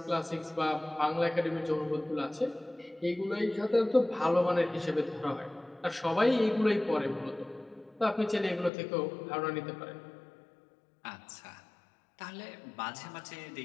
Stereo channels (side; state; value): right; drops out; at 8.7 s